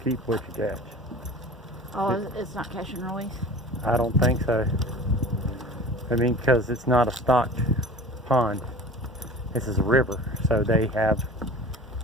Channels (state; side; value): normal; both; correlation 0.40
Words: keep what you catch. Oh, it's not catch and release? I don't think so. I mean, because it's not a stocked pond. This is a river, so they have